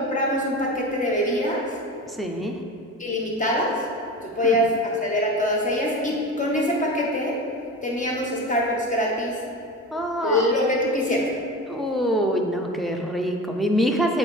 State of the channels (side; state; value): both; normal; correlation 0.30